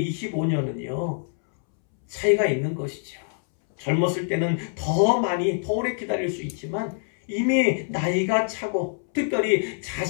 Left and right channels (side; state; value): right; silent; 62 dB below the other